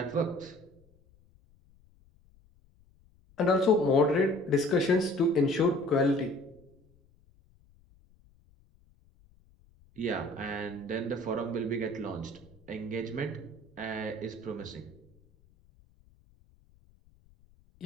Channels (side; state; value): left; noise; rumble, 30 dB below the sound